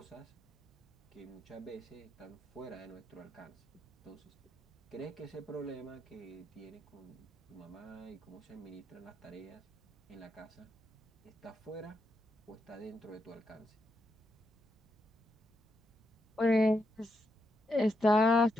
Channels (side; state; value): both; normal; correlation 0.82